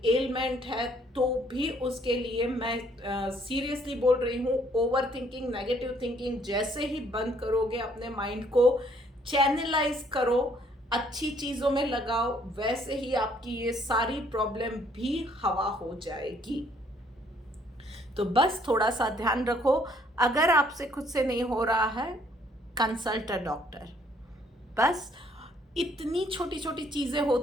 एलमेंट है, तो भी उसके लिए मैं सीरियसली बोल रही हूँ, ओवर थिंकिंग, नेगेटिव थिंकिंग जैसे ही बंद करोगे, अपने माइंड को चैनलाइज करो, अच्छी चीज़ों में लगाओ, वैसे ही आपकी ये सारी प्रॉब्लम भी हवा हो जाएगी। तो बस थोड़ा सा ध्यान रखो, अगर आपसे खुद से नहीं हो रहा है, कंसल्ट अ डॉक्टर। बस इतनी छोटी छोटी चीज़ें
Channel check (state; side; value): normal; both; correlation 0.64